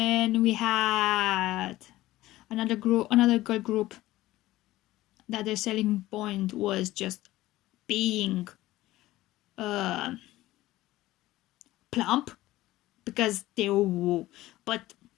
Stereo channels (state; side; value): quieter; right; 16.7 dB